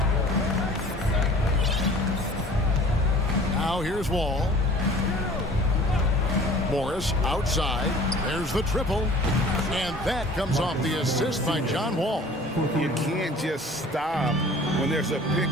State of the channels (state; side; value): normal; both; correlation 0.47